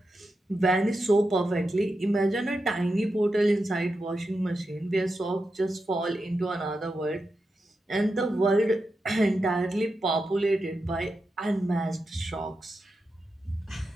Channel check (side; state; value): both; normal; correlation 0.88